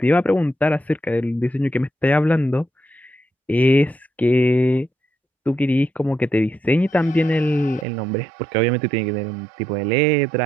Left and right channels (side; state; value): left; drops out; at 7.9 s